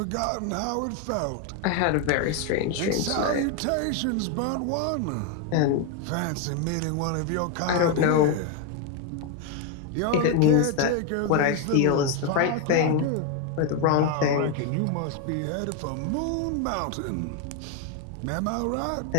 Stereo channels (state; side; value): different; both; correlation 0.01